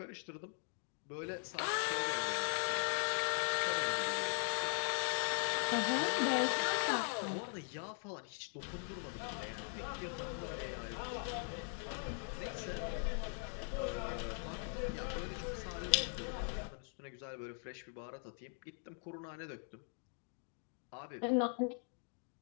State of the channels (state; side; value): silent; right; 51 dB below the other